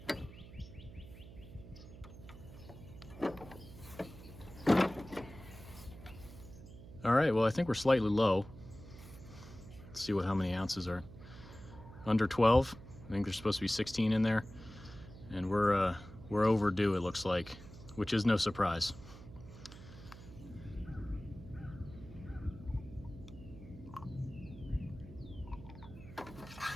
All right, well, I think we're slightly low. Let's see how many ounces are. Under 12. I think there's supposed to be 16 in there. And we're overdue, it looks like, which is no surprise.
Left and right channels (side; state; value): right; noise; hum, 16 dB below the sound